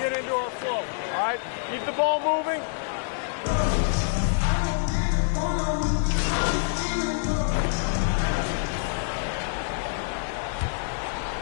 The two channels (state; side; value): silent; right; digital silence